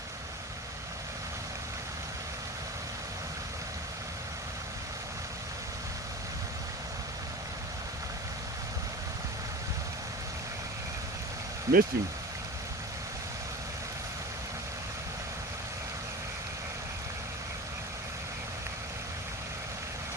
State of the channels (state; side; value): normal; both; correlation 0.32